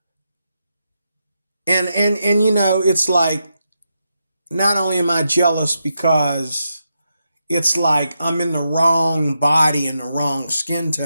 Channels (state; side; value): inverted; both; correlation -0.85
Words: it's like, not only am I jealous because it's like I'm in the wrong body and the wrong skin